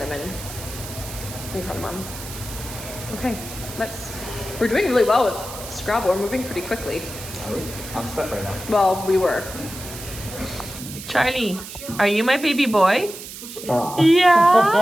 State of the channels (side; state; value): right; noise; hiss, 12 dB below the sound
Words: And cardamom. Okay, we're doing really well with Scrabble. We're moving pretty quickly. I'm stuck right now. Well, we were. Charlie, are you my baby boy?